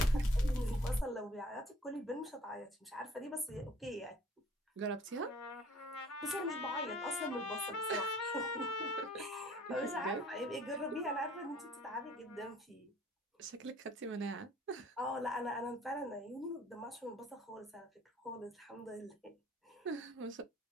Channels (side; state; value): both; normal; correlation 0.54